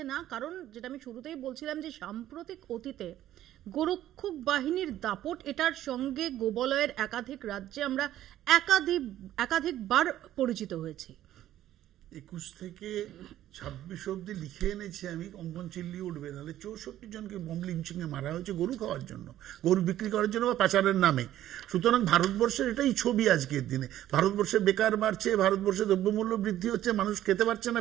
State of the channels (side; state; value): left; quieter; 12.9 dB